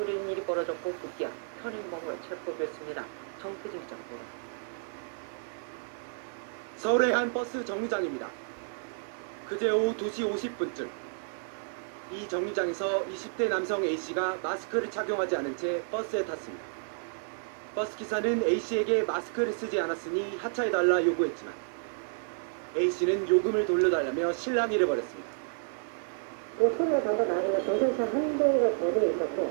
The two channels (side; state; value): left; silent; 57 dB below the other